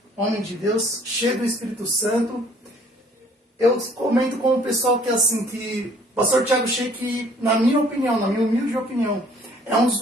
homem de Deus, cheio do Espírito Santo. Eu comento com o pessoal que assim, que o pastor Thiago Sheik, na minha opinião, na minha humilde opinião, é um dos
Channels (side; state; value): both; normal; correlation 0.58